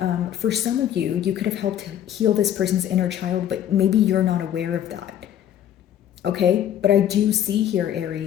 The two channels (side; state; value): right; quieter; 10.6 dB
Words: for some of you, you could have helped heal this person's inner child, but maybe you're not aware of that. Okay? But I do see here,